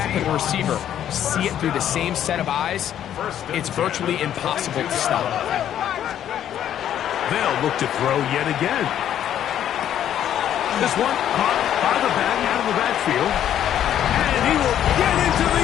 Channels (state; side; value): quieter; right; 10.6 dB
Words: and the receiver see it through the same set of eyes, it's virtually impossible to stop. They'll look to throw yet again. This one caught by the back out of the backfield. And he will get into the